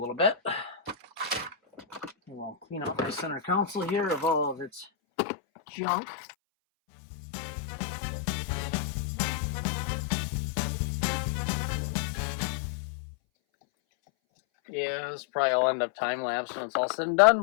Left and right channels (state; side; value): drops out; right; at 4.9 s